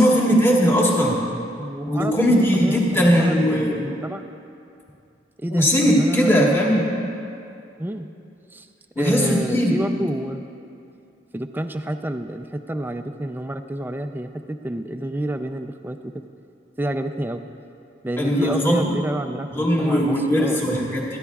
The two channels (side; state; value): both; normal; correlation 0.76